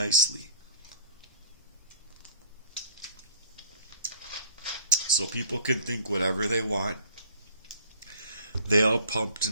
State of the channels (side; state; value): both; inverted; correlation -0.50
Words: So people can think whatever they want. They all pumped